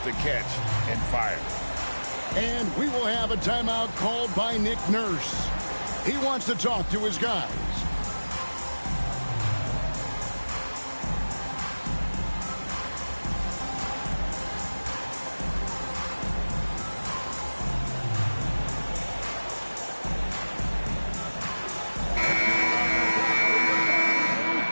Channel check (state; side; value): inverted; both; correlation -1.00